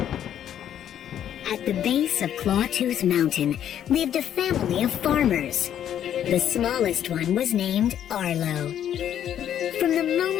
At the base of Clawtooth Mountain lived a family of farmers. The smallest one was named Arlo. From the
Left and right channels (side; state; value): right; quieter; 10.2 dB